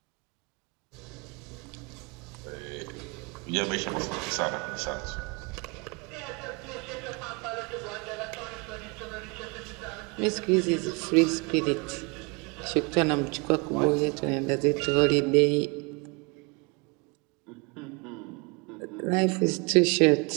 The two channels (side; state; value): left; quieter; 29.8 dB